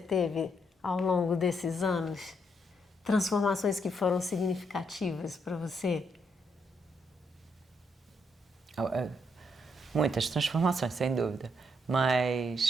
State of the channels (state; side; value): normal; both; correlation 0.76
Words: ao longo desses anos? Transformações que foram significativas para você? Muitas transformações, sem dúvida.